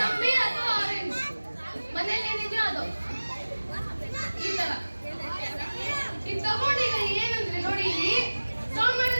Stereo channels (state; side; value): inverted; both; correlation -1.00